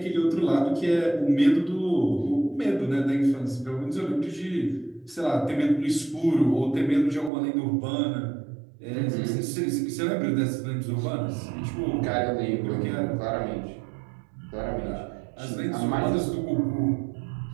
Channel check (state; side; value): drops out; left; at 7.3 s